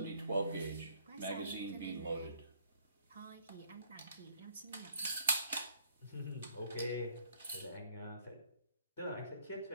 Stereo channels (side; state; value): both; inverted; correlation -0.63